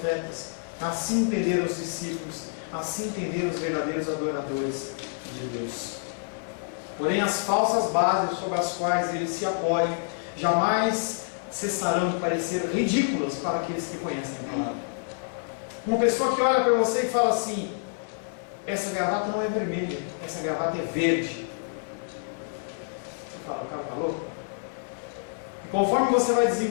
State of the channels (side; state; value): right; silent; 58 dB below the other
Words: assim entenderam os discípulos, assim entenderam os verdadeiros adoradores de Deus. Porém, as falsas bases sobre as quais eles se apoiam jamais cessarão de parecer ridículas para aqueles que conhecem a palavra. Uma pessoa que olha para você e fala assim: essa gravata não é vermelha, essa gravata é verde. Você fala: o cara está louco? E conforme você vai